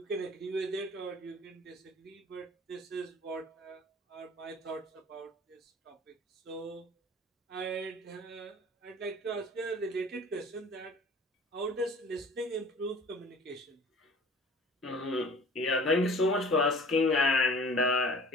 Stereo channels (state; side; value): normal; both; correlation 0.47